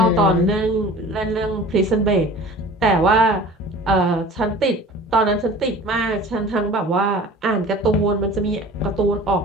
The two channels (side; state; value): both; normal; correlation 0.42